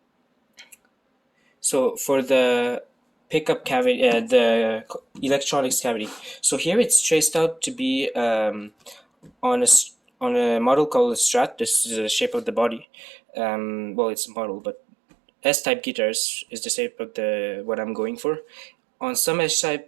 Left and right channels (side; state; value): left; drops out; at 12.9 s